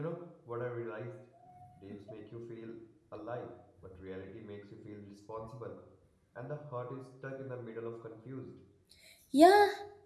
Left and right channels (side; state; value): both; identical; correlation 1.00